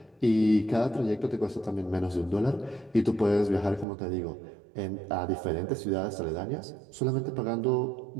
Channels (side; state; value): left; drops out; at 3.9 s